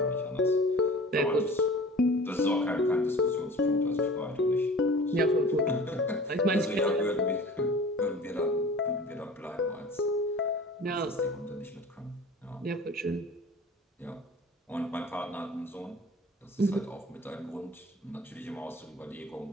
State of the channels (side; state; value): both; normal; correlation 0.42